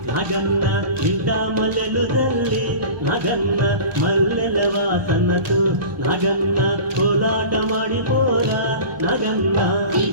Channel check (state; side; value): late; left; 1.2 ms